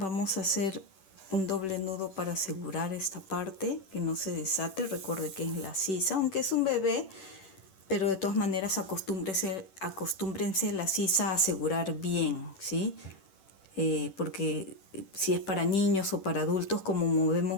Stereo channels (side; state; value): right; late; 10 ms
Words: a hacer un doble nudo para asegurar esta parte, que no se desate. Recuerde que es la sisa, aunque es un bebé, pero de todas maneras acostúmbrense la sisa a asegurar bien, ¿sí? Porque si es para niños o para adultos, como movemos